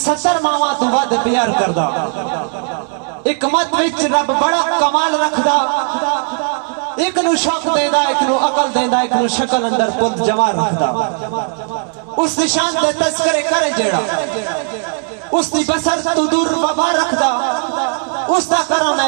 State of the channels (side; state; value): left; silent; 55 dB below the other